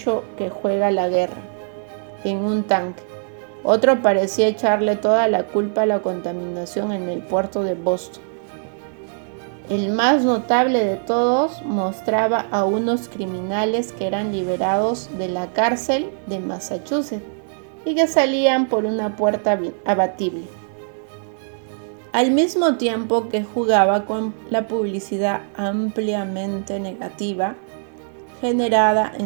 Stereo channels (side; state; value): left; silent; 65 dB below the other